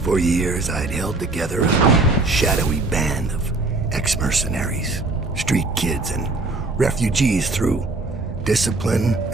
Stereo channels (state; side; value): quieter; left; 3.3 dB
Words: For years, I'd held together a shadowy band of ex-mercenaries, street kids, and refugees through discipline